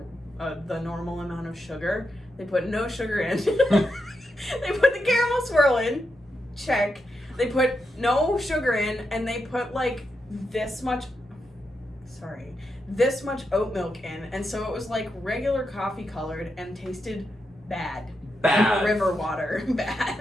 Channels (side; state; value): both; normal; correlation 0.85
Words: the normal amount of sugar. They put no sugar in. They put the caramel swirl in. Check. They put no sugar in, and they put like this much oat milk in, and so it was like regular coffee colored and tasted bad. Bad. River water.